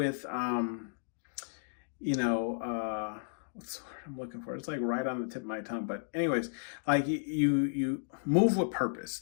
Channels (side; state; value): right; silent; digital silence